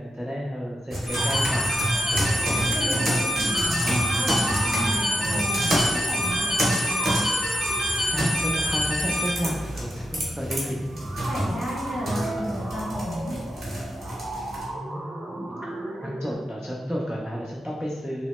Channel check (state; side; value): normal; both; correlation 0.87